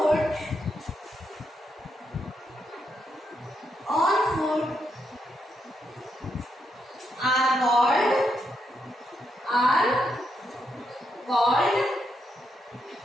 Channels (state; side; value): normal; both; correlation 0.81